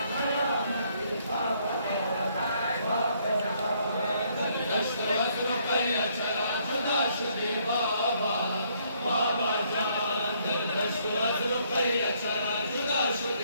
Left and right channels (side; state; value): both; inverted; correlation -0.69